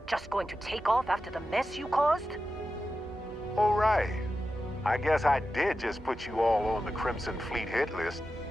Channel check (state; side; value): normal; both; correlation 0.91